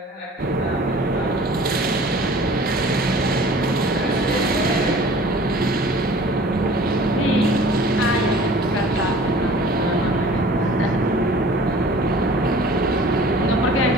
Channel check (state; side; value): normal; both; correlation 0.47